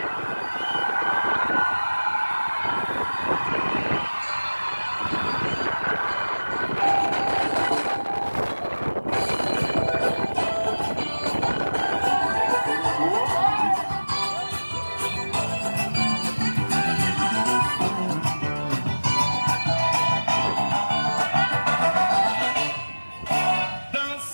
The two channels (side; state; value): both; inverted; correlation -1.00